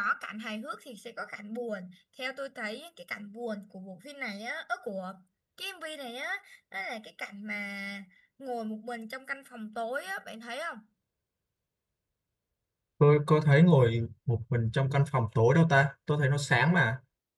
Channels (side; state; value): both; identical; correlation 1.00